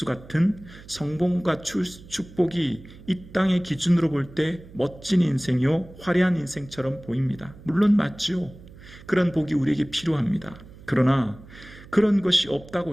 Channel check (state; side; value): noise; right; hum, 19 dB below the sound